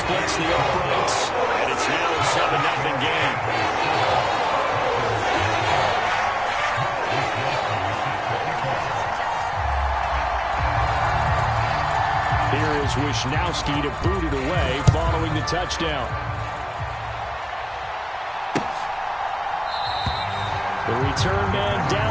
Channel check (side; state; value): both; identical; correlation 1.00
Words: the uprights, and it's now a 7-0 game. Here is Wisnowski to boot it away following the touchdown. The return man